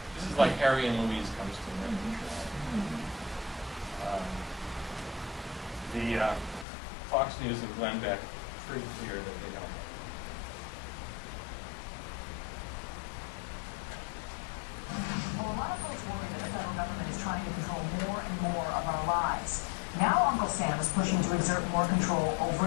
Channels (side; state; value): right; drops out; at 6.7 s